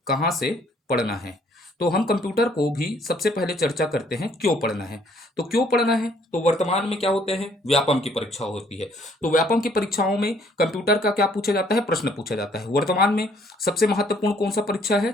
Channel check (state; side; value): normal; both; correlation 0.63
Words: कहाँ से पढ़ना है। तो हम कंप्यूटर को भी सबसे पहले चर्चा करते हैं क्यों पढ़ना है। तो क्यों पढ़ना है, तो वर्तमान में क्या होते हैं, व्यापम की परीक्षा होती है। तो व्यापम की परीक्षाओं में कंप्यूटर का क्या पूछा जाता है? प्रश्न पूछा जाता है। वर्तमान में सबसे महत्वपूर्ण कौन सा परीक्षा है?